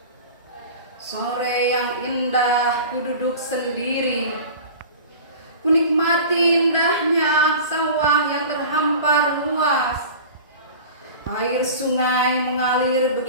Sore yang indah, ku duduk sendiri, ku nikmati indahnya sawah yang terhampar luas. Air sungai mengalir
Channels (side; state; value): both; inverted; correlation -0.37